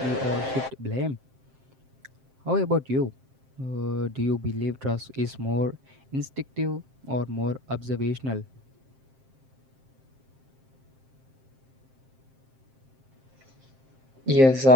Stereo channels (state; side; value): late; left; 7.6 ms